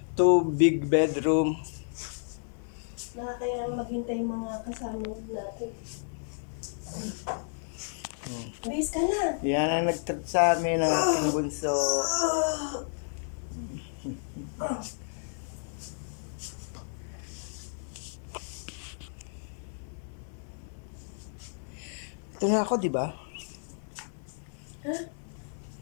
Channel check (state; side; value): silent; right; 56 dB below the other